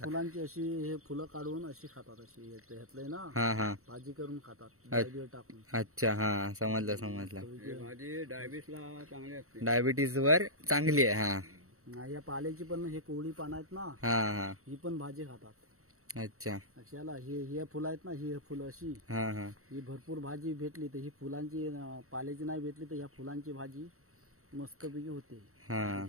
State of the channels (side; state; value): left; late; 0.64 ms